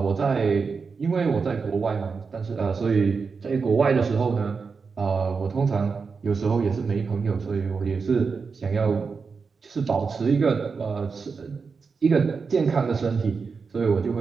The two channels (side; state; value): left; quieter; 5.1 dB